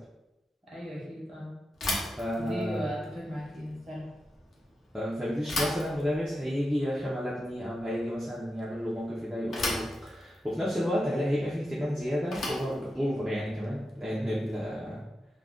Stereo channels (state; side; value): normal; both; correlation 0.89